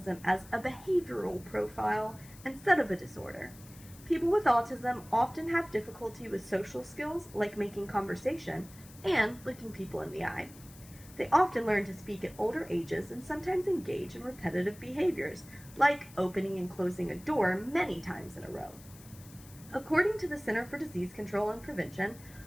as a behavioral profile instead of a disorder. People with autism often have difficulty with social skills like making conversation and looking people in the eye. They often learn to speak at older ages and sometimes engage in repetitive behaviors, like opening and closing a door many times in a row. According to the Center for Disease Control and Prevention,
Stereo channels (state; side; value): noise; left; hiss, 21 dB below the sound